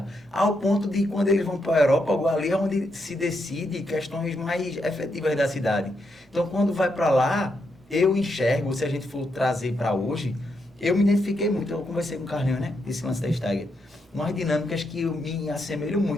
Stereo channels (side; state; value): both; normal; correlation 0.81